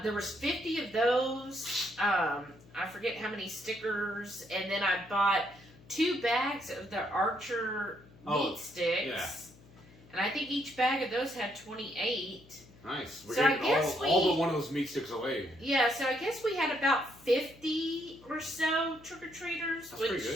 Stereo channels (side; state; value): left; noise; hum, 24 dB below the sound